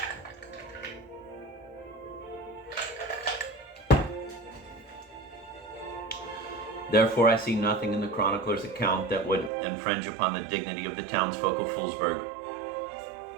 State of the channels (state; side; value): drops out; left; at 9.5 s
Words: Therefore, I see nothing in the chronicler's account that would infringe upon the dignity of the townsfolk of Foolsburg.